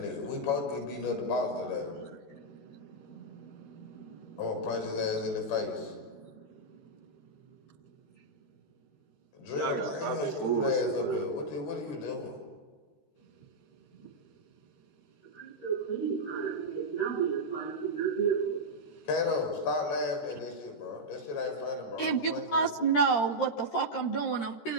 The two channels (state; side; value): late; right; 13 ms